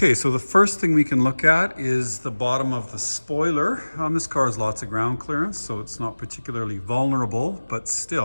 so the first thing we can look at is the bottom of the spoiler. This car has lots of ground clearance, so it's not particularly vulnerable, but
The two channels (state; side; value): inverted; both; correlation -1.00